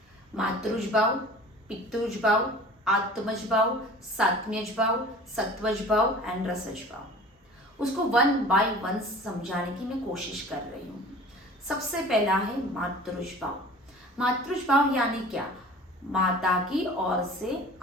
मातृज भाव, पितृज भाव, आत्मज भाव, सात्म्यज भाव, सत्वज भाव एंड रसज भाव। उसको 1 बाय 1 समझाने की मैं कोशिश कर रही हूँ। सबसे पहला है मातृज भाव। मातृज भाव यानी क्या? माता की ओर से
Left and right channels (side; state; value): both; normal; correlation 0.43